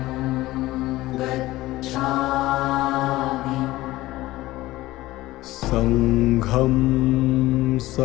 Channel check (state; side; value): quieter; right; 17.5 dB